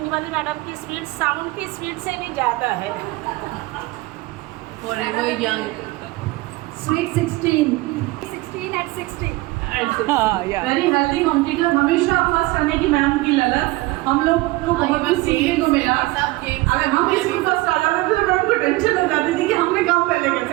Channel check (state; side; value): quieter; left; 20.6 dB